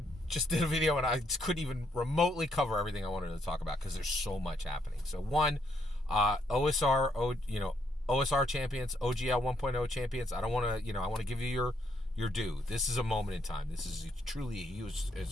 just did a video and I couldn't even remotely cover everything I wanted to talk about because there's so much happening. So one, OSR champions, OGL 1.0 champions. I don't want to, I want to give you your due. This is a moment in time. This is truly a huge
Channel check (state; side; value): normal; both; correlation 0.73